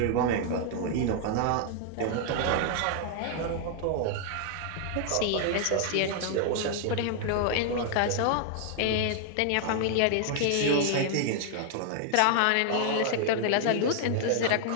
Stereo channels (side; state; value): both; different; correlation -0.01